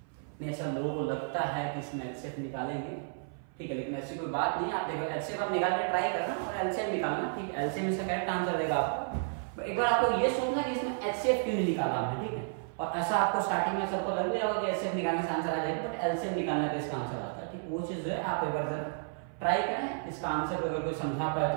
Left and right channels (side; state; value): left; silent; 55 dB below the other